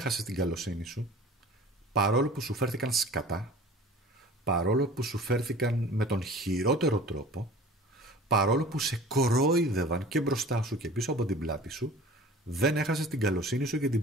την καλοσύνη σου, παρόλο που σου φέρθηκαν σκατά, παρόλο που σου φέρθηκαν με τον χειρότερο τρόπο, παρόλο που σε κορόιδευαν και μπροστά σου και πίσω από την πλάτη σου, δεν έχασες την καλοσύνη σου και την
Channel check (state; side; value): normal; both; correlation 0.43